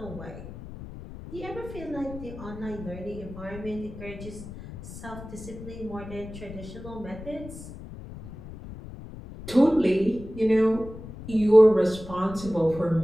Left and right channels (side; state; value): left; noise; rumble, 13 dB below the sound